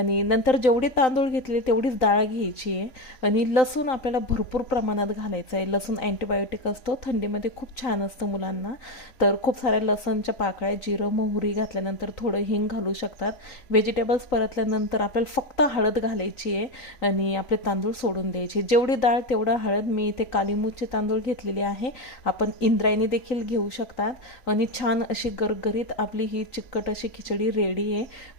नंतर जेवढे तांदूळ घेतले तेवढीच डाळ घ्यायची आहे। आणि लसूण आपल्याला भरपूर प्रमाणात घालायचं आहे। लसूण अँटीबायोटिक असतो, थंडीमध्ये खूप छान असतं मुलांना। तर खूप साऱ्या लसणच्या पाकळ्या, जिरं, मोहरी घातल्यानंतर थोडं हिंग घालू शकतात। व्हेजिटेबल्स परतल्यानंतर आपल्याला फक्त हळद घालायची आहे आणि आपले तांदूळ सोडून द्यायचे। जेवढी डाळ तेवढा हळद। मी इथे कालीमूचे तांदूळ घेतलेले आहे, आपण इंद्रायणी देखील घेऊ शकतात। आणि छान अशी गरगरीत आपली ही चिकट अशी खिचडी रेडी आहे।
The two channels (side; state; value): right; late; 3.9 ms